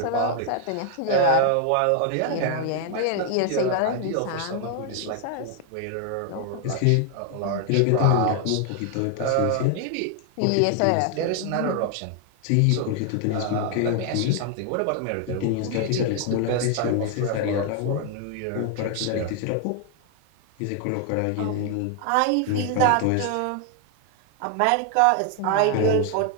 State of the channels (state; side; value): different; both; correlation 0.00